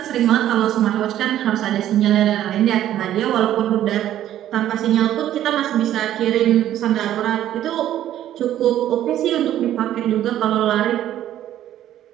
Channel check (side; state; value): left; quieter; 12.1 dB